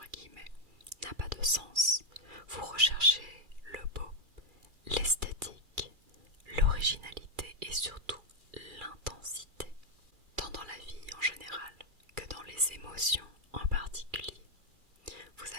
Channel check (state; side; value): late; left; 2.3 ms